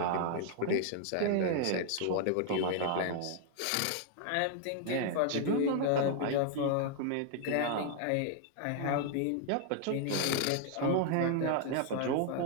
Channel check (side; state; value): both; different; correlation 0.00